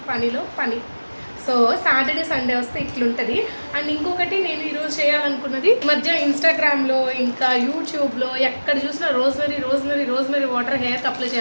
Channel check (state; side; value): inverted; both; correlation -1.00